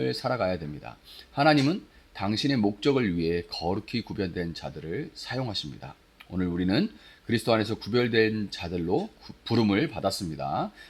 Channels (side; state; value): both; identical; correlation 1.00